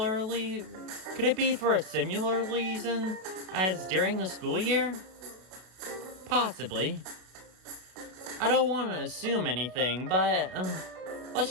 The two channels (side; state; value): left; late; 32 ms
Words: reason as during the school year? Possibly. I don't want to assume anything, but